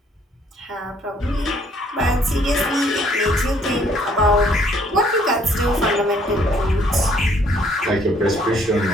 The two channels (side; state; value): both; normal; correlation 0.63